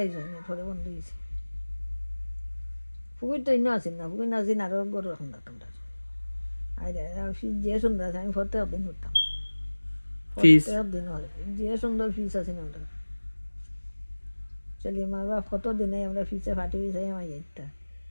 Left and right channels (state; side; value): inverted; both; correlation -1.00